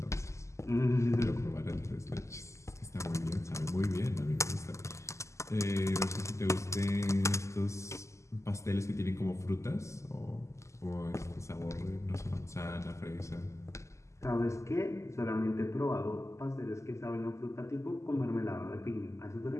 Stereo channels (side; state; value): right; late; 0.14 ms